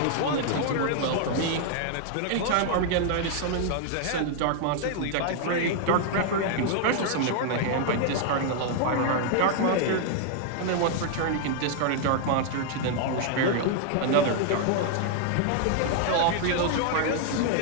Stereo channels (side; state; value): both; different; correlation 0.00